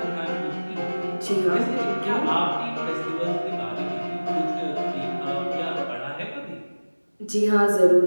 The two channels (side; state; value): both; inverted; correlation -1.00